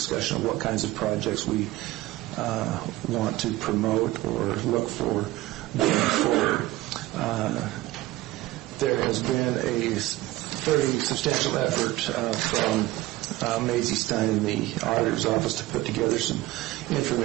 of what kinds of projects we want to promote or look for going forward. There has been a fairly substantial effort from Maisie Stein in the auditor's office to put together some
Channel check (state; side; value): quieter; left; 17.6 dB